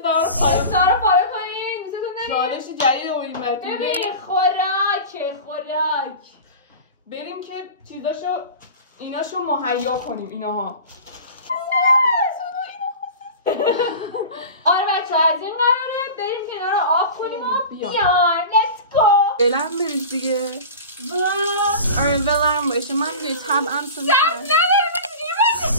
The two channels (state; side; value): inverted; both; correlation -0.34